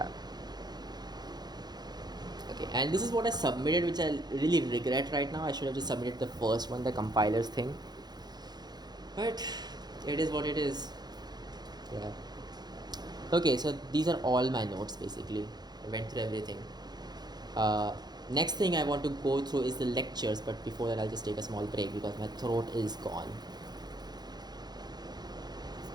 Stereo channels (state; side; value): late; left; 0.20 ms